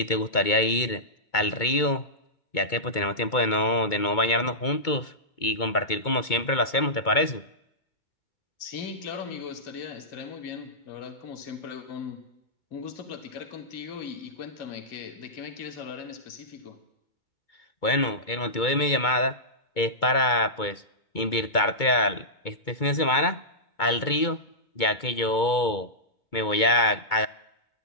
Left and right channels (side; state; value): right; late; 2.2 ms